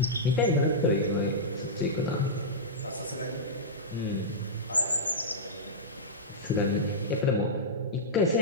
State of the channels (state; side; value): normal; both; correlation -0.12